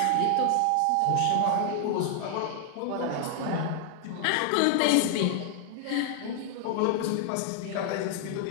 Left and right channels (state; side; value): different; both; correlation 0.00